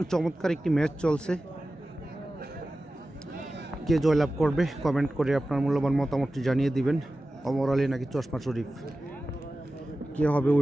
চমৎকার একটি ম্যাচ চলছে। কে জয়লাভ করবে কমেন্ট করে আপনার মূল্যবান মতামতটি জানিয়ে দিবেন। ওমর আলী নাকি চশমা শরীফ, কে হবে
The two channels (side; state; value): both; normal; correlation 0.95